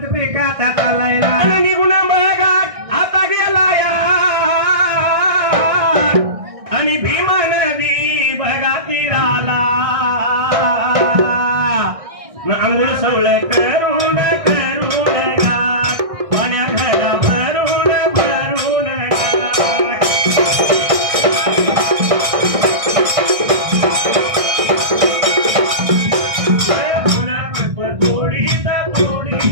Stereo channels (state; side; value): late; left; 1.6 ms